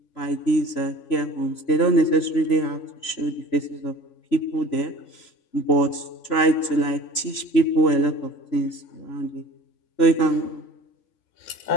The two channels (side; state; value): right; late; 3.0 ms